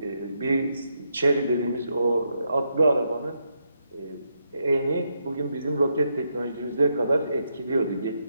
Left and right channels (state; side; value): inverted; both; correlation -0.80